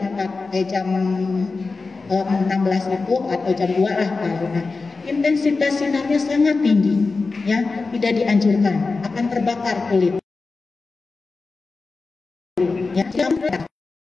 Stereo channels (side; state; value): right; quieter; 4.0 dB